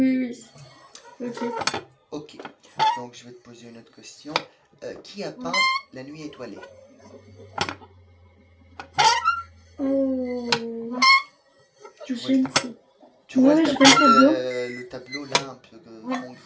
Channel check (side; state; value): both; identical; correlation 1.00